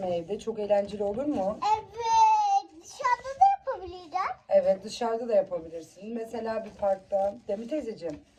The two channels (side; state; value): both; identical; correlation 1.00